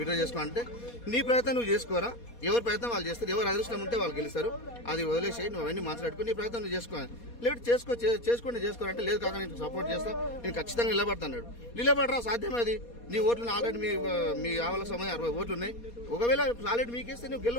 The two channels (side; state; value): right; late; 4.2 ms